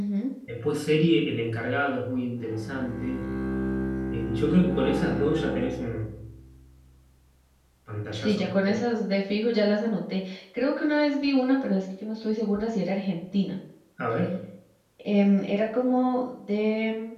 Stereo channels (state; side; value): identical; both; correlation 1.00